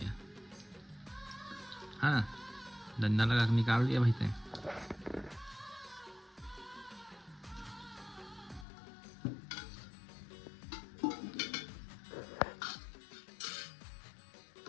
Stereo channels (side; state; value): right; drops out; at 8.7 s